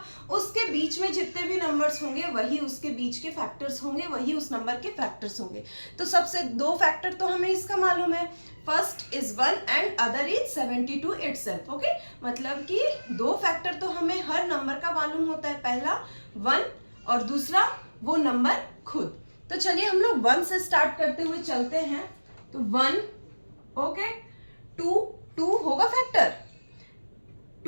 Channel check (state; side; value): inverted; both; correlation -1.00